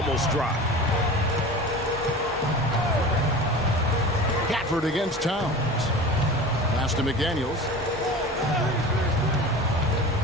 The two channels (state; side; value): normal; both; correlation 0.35